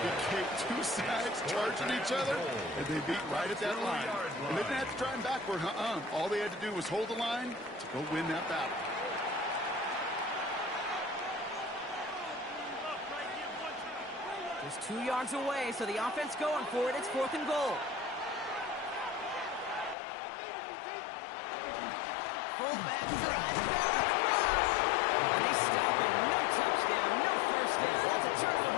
Kate, 2 sides charging each other, and they beat right at that line. And they didn't have to drive backward, All they had to do was hold the line to go win that battle. Just 2 yards away, so the offense going for it. It's 4th and goal. Fullback drive down across. And they stop it. No touchdown, no 1st down. That's a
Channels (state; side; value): drops out; right; at 20.0 s